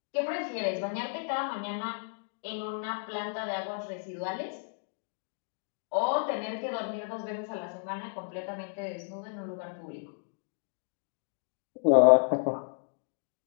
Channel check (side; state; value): right; silent; digital silence